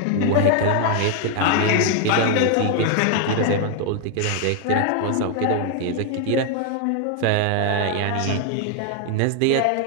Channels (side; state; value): both; different; correlation 0.00